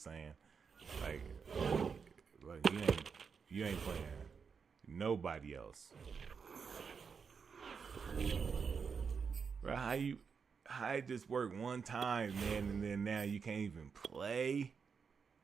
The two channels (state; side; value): quieter; left; 5.9 dB